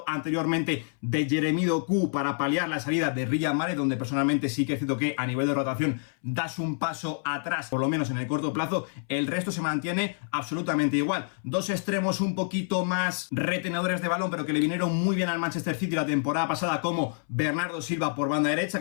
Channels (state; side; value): silent; right; 60 dB below the other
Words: anteriormente de Jeremy Doku para paliar la salida de Riyad Mahrez, donde personalmente sí que es cierto que a nivel de rotación das un paso atrás, por lo menos en el corto plazo. El resto se mantiene absolutamente igual. Dos extremos un poquito más retenedores de balón, pero que le vinieron muy bien al Manchester City la temporada pasada, como Bernardo Silva por banda derecha,